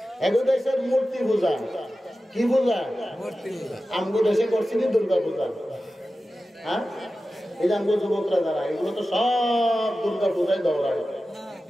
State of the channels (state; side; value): normal; both; correlation 0.94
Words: এগো দেশের মূর্তি পূজা, কি পূজা? আমগো দেশে করছি দুর্গা পূজা। হ্যাঁ, এই যে আমগো যুবকরা যারা, এগুলো তো সব দুর্গা পূজায় দৌড়ায়।